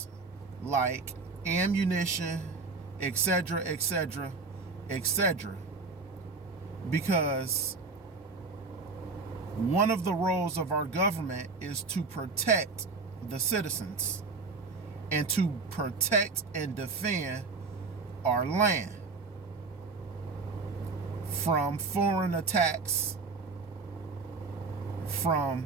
like ammunition, etc., etc., etc. Because one of the roles of our government is to protect the citizens and to protect and defend our land from foreign attacks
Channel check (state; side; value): quieter; left; 4.2 dB